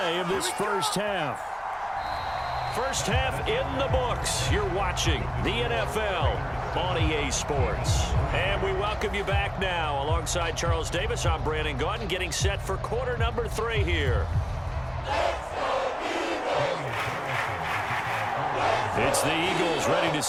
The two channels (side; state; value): both; identical; correlation 1.00